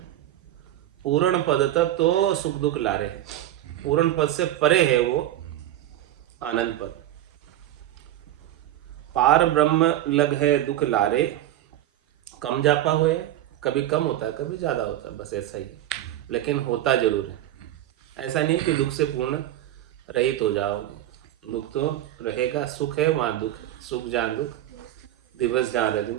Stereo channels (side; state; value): left; quieter; 13.2 dB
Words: पूर्ण पद तक तो सुख दुख लारे है। पूर्ण पद से परे है वो आनंद पद। पार ब्रह्म लग है दुख लारे, कम जापा हुए। कभी कम होता है, कभी ज्यादा होता है, बस ऐसा ही। लेकिन होता जरूर है। ऐसा नहीं कि दुख से पूर्ण रहित हो जाओगे, दुख तो रहेगा। सुख है वहां दुख, सुख जहाँ दुख, दिवस जहाँ